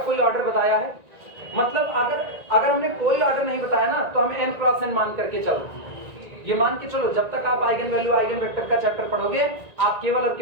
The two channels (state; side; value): late; left; 1.9 ms